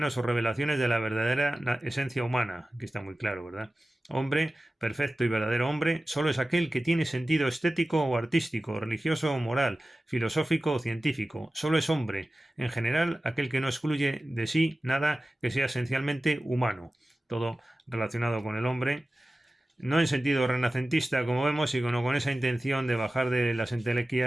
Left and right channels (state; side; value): normal; both; correlation 0.96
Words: o revelaciones de la verdadera esencia humana. Aquí está muy claro, ¿verdad? Hombre, perfecto y verdadero hombre, solo es aquel que tiene sentido estético o artístico, religioso o moral, filosófico o científico. Solo es hombre, en general, aquel que no excluye de sí nada que sea esencialmente humano. Todo relacionado con el hombre, no en sentido renacentista, como vemos, sino con esa intención de bajar de las